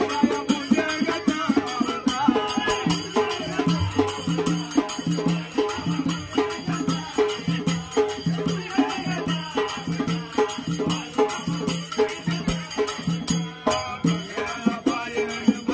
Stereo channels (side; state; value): both; identical; correlation 1.00